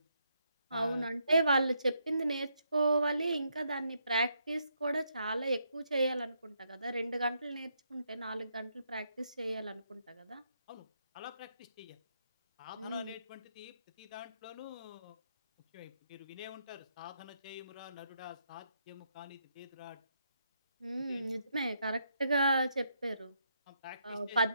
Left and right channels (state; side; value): inverted; both; correlation -0.77